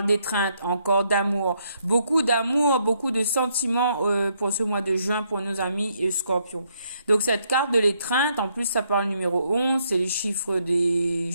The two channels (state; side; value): inverted; both; correlation -0.74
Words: d'étreinte, encore d'amour, beaucoup de sentiments pour ce mois de juin pour nos amis scorpions. Donc cette carte de l'étreinte, en plus ça parle numéro 11, c'est les chiffres des